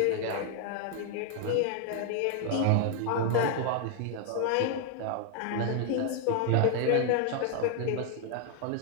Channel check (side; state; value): both; different; correlation 0.00